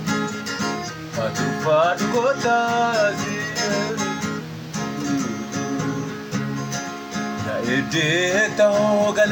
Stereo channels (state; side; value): identical; both; correlation 1.00